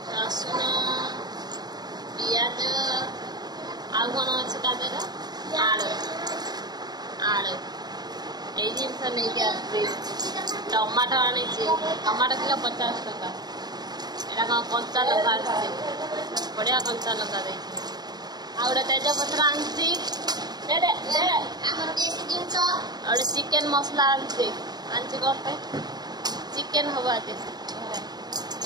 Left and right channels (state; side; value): late; left; 0.20 ms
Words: रसुण पियाज आ कौन अच्छे तादेह आलू आलू ये जिनस नहीं टमाटो आनी टमाटो किलो 50 टका यहाँ कौन कंचा लंका बढ़िया कंचा लंका दे गोटे तेजपत्र आनी गोटे चिकेन मसला आनी गोटे चिकेन हम आज